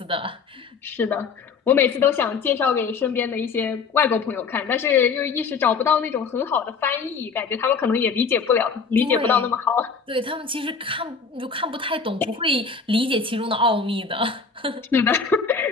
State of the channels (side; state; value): right; quieter; 5.3 dB